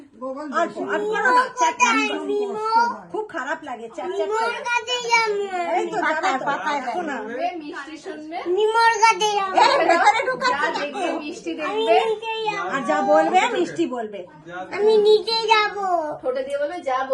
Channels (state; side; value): identical; both; correlation 1.00